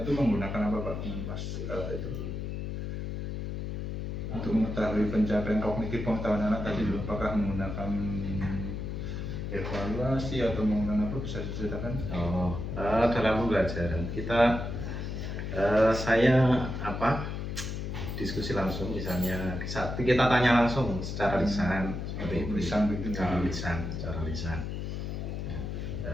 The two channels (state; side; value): noise; left; hum, 4 dB below the sound